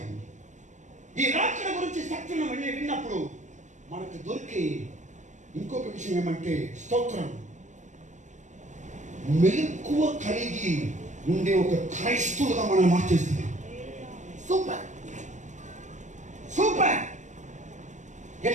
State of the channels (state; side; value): late; left; 0.35 ms